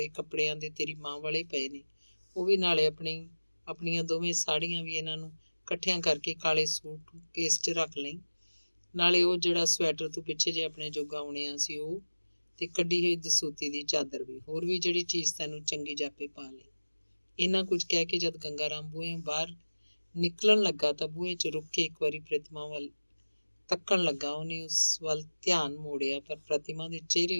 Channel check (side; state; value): both; inverted; correlation -1.00